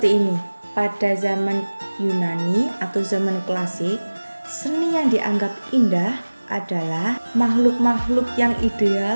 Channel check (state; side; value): inverted; both; correlation -1.00